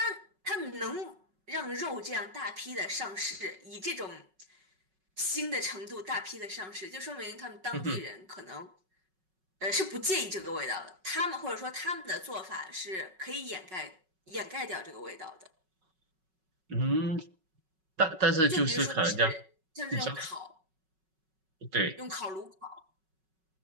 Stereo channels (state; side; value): late; left; 5.4 ms